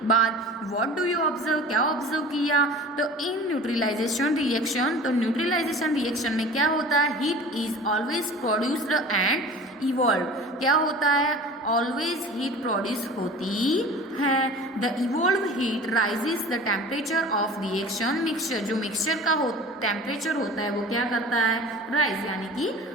बाद। व्हाट डू यू ऑब्जर्व, क्या ऑब्जर्व किया, तो इन न्यूट्रलाइजेशन रिएक्शन, तो न्यूट्रलाइजेशन रिएक्शन में क्या होता है, heat is always produced and evolve. क्या होता है, ऑलवेज हीट प्रोड्यूस होती है। The evolve heat rises the temperature of reaction mixture. जो मिक्सचर का टेम्परेचर होता है वो क्या करता है, राइज यानी कि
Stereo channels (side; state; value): both; normal; correlation 0.40